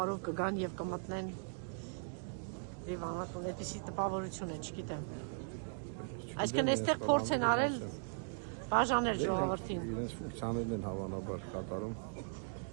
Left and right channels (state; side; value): silent; left; digital silence